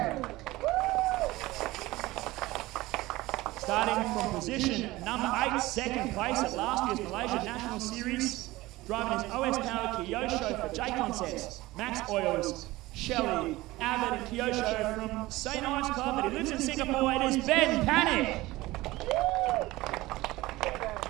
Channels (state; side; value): quieter; left; 19.0 dB